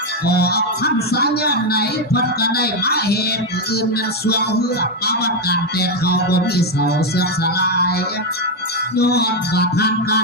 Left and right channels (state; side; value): normal; both; correlation 0.05